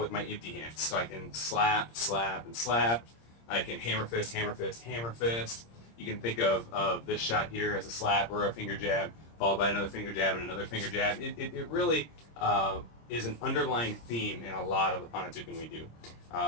my empty hands. So I can slap, slap, and slap. I can hammer fist, hammer fist, hammer fist. You can think of this shot here as a slap or a finger jab, followed by another finger jab and another finger jab. It really is an underlying theme in a lot of the Panatukan we do.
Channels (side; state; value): right; late; 26 ms